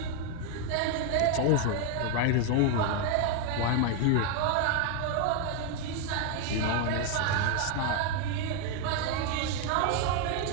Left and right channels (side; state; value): both; different; correlation 0.01